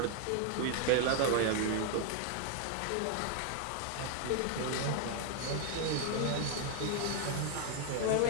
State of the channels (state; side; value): different; both; correlation 0.00